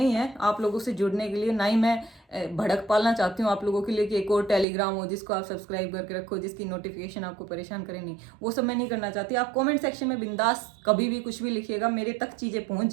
है आप लोगों से जुड़ने के लिए, ना ही मैं भड़क पालना चाहती हूँ आप लोगों के लिए कि एक और टेलीग्राम हो जिसको आप सब्सक्राइब करके रखो, जिसकी नोटिफिकेशन आपको परेशान करे। नहीं, वो सब मैं नहीं करना चाहती। आप कमेंट सेक्शन में बिंदास कभी भी कुछ भी लिखिएगा, मेरे तक चीज़ें पहुँच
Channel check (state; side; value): drops out; left; at 4.7 s